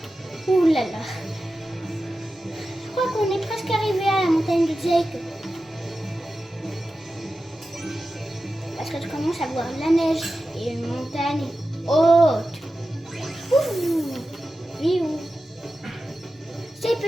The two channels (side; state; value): both; normal; correlation 0.93